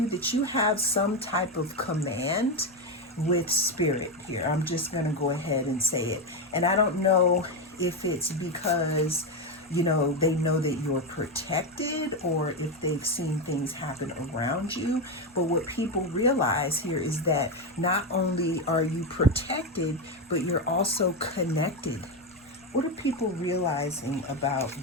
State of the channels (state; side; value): normal; both; correlation 0.11